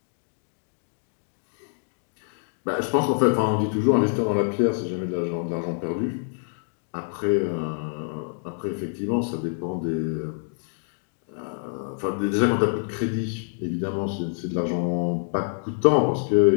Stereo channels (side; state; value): right; silent; 61 dB below the other